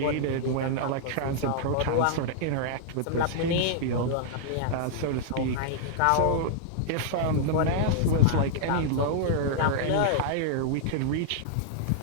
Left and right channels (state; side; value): different; both; correlation -0.01